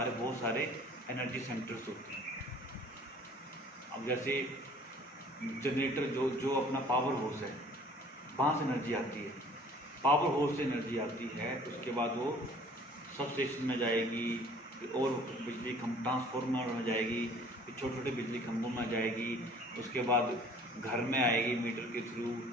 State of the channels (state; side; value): normal; both; correlation 0.52